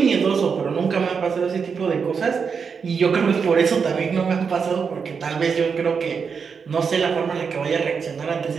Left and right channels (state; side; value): quieter; left; 5.9 dB